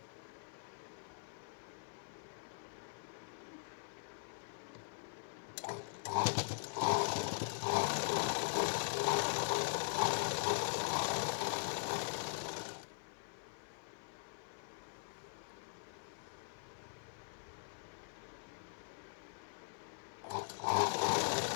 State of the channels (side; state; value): right; silent; 50 dB below the other